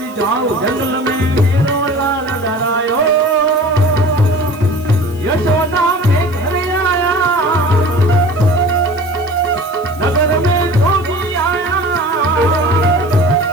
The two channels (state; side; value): noise; left; hiss, 23 dB below the sound